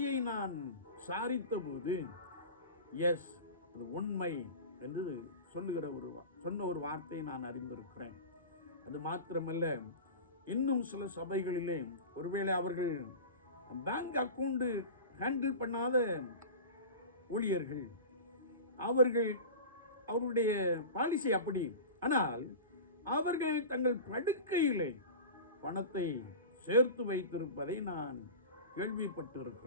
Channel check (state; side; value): inverted; both; correlation -0.32